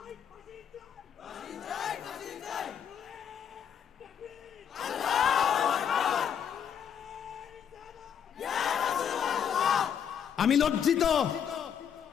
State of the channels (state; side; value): quieter; right; 8.3 dB